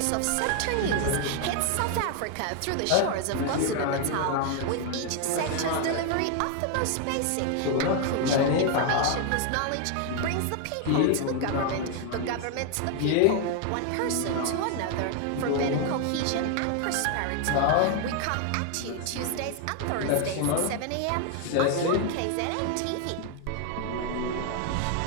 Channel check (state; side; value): different; both; correlation 0.01